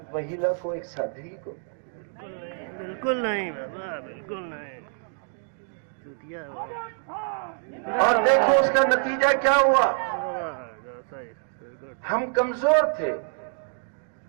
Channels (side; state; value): left; silent; 60 dB below the other